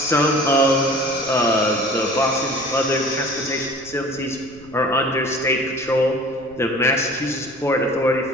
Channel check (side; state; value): right; noise; rumble, 23 dB below the sound